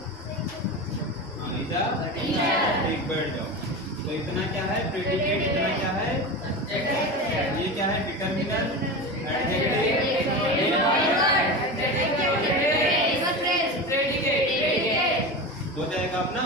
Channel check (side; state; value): right; noise; hum, 23 dB below the sound